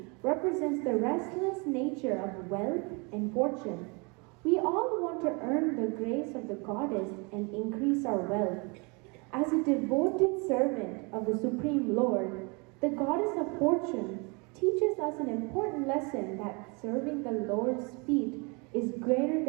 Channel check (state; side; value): quieter; left; 30.6 dB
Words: represents the restless nature of wealth and fortune. We all want to earn the grace of the goddess and increase our wealth. As a devoted servant of the Supreme Lord, the goddess of fortune teaches us an important lesson that serving the Lord's feet is greater